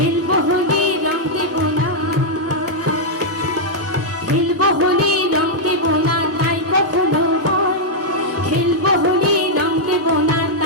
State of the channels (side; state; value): both; normal; correlation -0.05